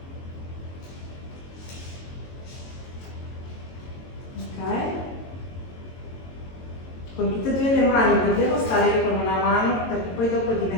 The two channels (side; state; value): right; late; 22 ms